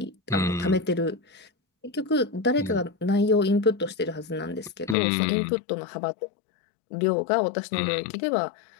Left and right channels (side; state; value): right; drops out; at 5.0 s